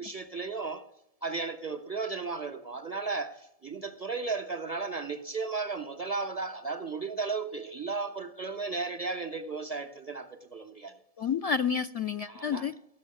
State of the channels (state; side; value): late; right; 1.7 ms